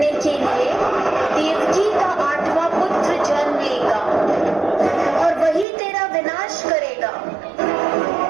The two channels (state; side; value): drops out; left; at 5.7 s